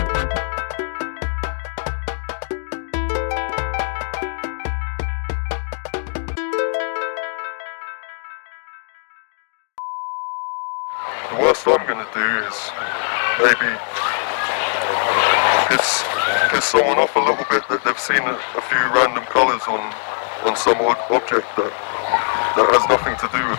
The worst I'm gonna do is maybe piss someone off a little bit that they've seen a few random colours on some object that has nothing to do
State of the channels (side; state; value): right; silent; digital silence